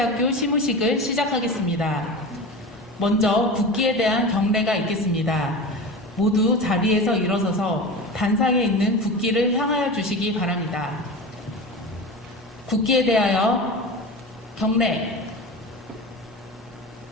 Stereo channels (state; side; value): normal; both; correlation 0.29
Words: 시무식을 시작하겠습니다. 먼저 국기에 대한 경례가 있겠습니다. 모두 자리에서 일어서서 단상에 있는 국기를 향하여 주시기 바랍니다. 국기에 대하여 경례.